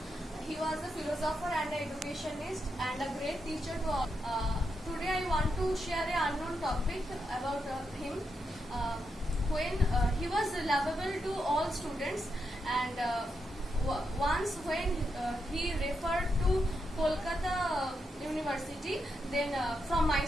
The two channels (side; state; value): both; normal; correlation 0.84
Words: He was a philosopher and an educationist and a great teacher to all. Today I want to share an unknown topic about him. When he was lovable to all students, and once when he referred to Kolkata University, then from